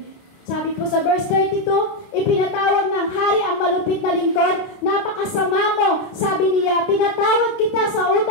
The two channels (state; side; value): late; right; 29 ms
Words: Sabi po sa verse 32, ipinatawag ng hari ang malupit na lingkod, napakasama mo, sabi niya, pinatawad kita sa